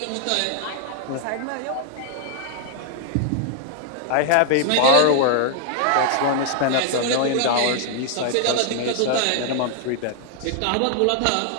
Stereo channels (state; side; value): different; both; correlation 0.00